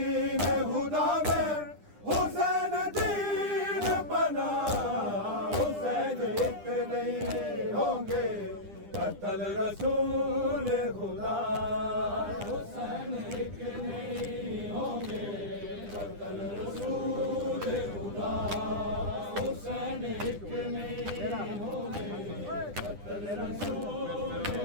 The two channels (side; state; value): left; late; 9.9 ms